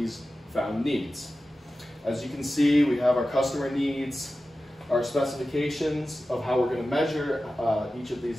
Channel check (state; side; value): normal; both; correlation 0.94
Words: found needs. As you can see, we have our customer needs, our specifications of how we're going to measure each of